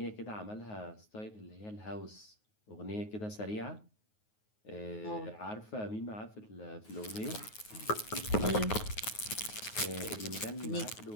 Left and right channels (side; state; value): right; late; 9.4 ms